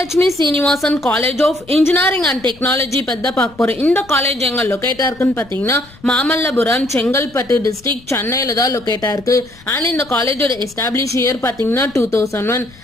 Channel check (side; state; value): left; noise; rumble, 24 dB below the sound